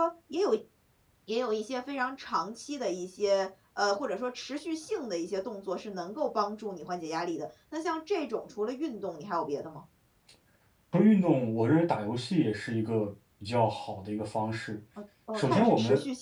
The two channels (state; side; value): identical; both; correlation 1.00